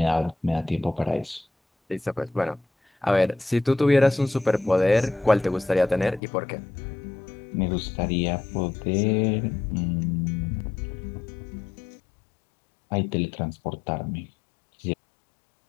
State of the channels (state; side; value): drops out; right; at 6.2 s